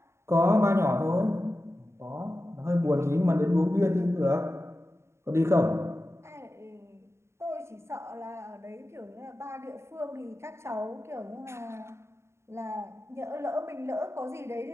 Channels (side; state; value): left; late; 0.13 ms